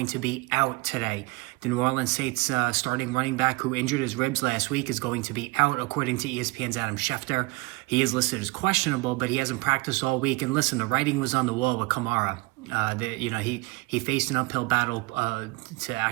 to be out today. The New Orleans Saints starting running back who injured his ribs last week is going to be out, according to ESPN's Adam Schefter. He is listed as questionable, but he hasn't practiced all week. And listen, the writing was on the wall with Kamara. He faced an uphill battle to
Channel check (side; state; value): left; quieter; 24.6 dB